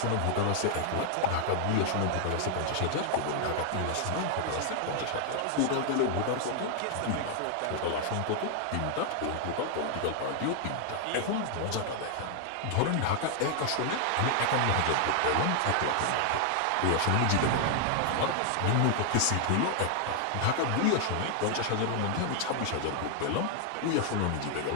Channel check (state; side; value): different; both; correlation 0.00